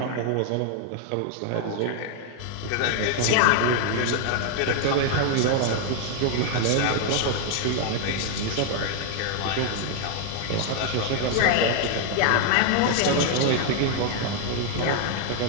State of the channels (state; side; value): different; both; correlation 0.00